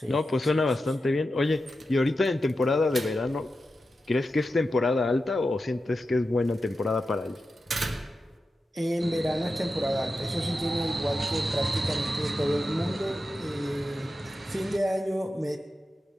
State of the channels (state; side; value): normal; both; correlation 0.91